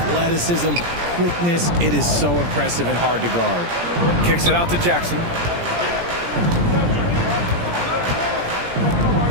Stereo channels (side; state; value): left; late; 17 ms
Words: quickness, it is so impressive and hard to guard. Kicks it out to Jackson.